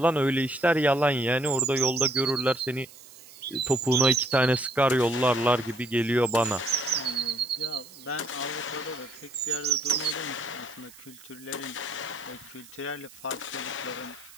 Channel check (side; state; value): right; noise; hiss, 21 dB below the sound